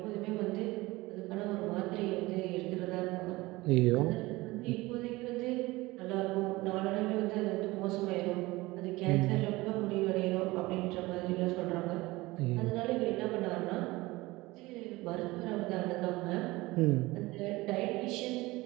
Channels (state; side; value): quieter; left; 20.6 dB